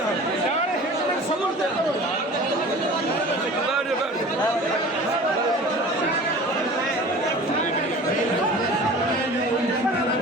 यार समझ दे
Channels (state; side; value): normal; both; correlation 0.41